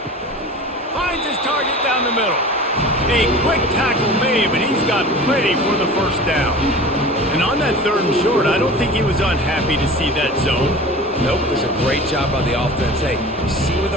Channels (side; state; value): both; normal; correlation 0.37